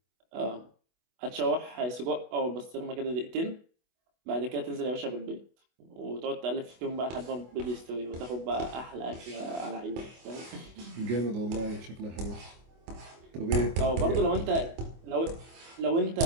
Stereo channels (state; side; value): late; left; 24 ms